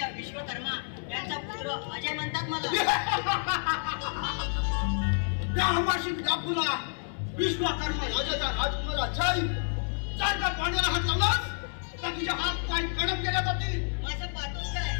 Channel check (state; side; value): silent; right; 58 dB below the other